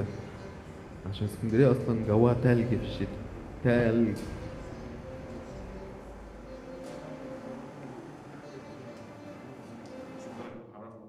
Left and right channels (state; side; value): identical; both; correlation 1.00